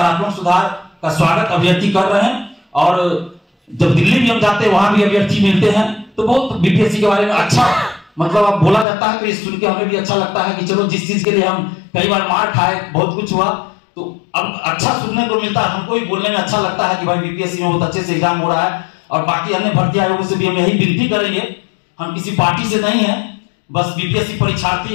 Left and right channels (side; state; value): right; drops out; at 8.8 s